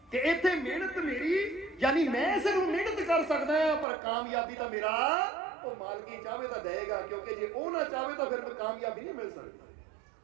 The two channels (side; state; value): left; drops out; at 3.9 s